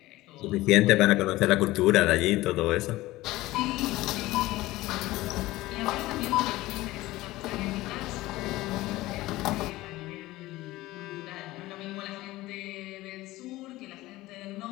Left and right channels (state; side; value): quieter; right; 18.0 dB